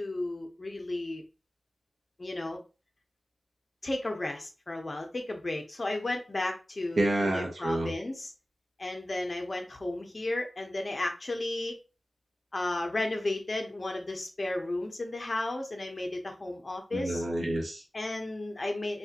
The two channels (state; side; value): normal; both; correlation 0.96